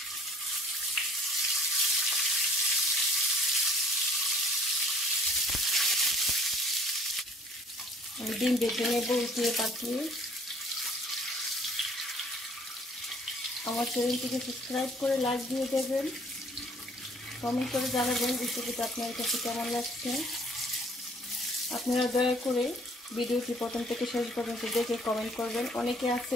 ডিম ভেজে নেব উঠিয়ে পাঠিয়ে। আমার চ্যানেলটিকে সাবস্ক্রাইব করে লাইক দিয়ে দেবেন, কমেন্ট করে জানাবেন রেসিপিটা আপনার কাছে কেমন লাগছে। আপনারা দয়া করে ভিডিওটি প্রথম থেকে শেষ পর্যন্ত দেখে কমেন্ট করবেন। অনেকে আছে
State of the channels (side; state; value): both; normal; correlation 0.56